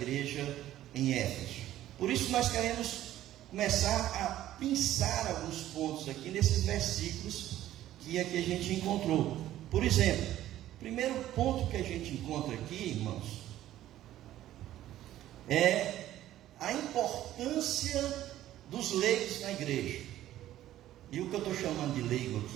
em Éfeso. Por isso nós queremos começar a pensar alguns pontos aqui nesses versículos que aqui a gente encontrou. Por exemplo, o primeiro ponto que a gente encontra aqui, irmãos, é a importância dos leigos na igreja. E o que eu estou chamando de leigo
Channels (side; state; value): left; quieter; 13.4 dB